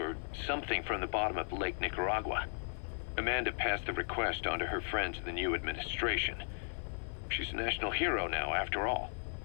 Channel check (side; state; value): right; silent; 54 dB below the other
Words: something from the bottom of Lake Nicaragua. Amanda passed the request on to her friends in the new administration. She's a national hero now, after all.